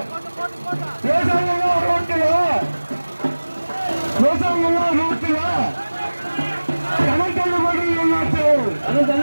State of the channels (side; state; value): both; inverted; correlation -1.00